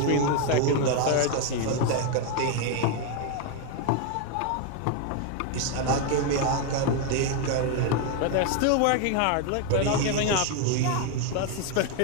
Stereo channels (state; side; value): different; both; correlation 0.01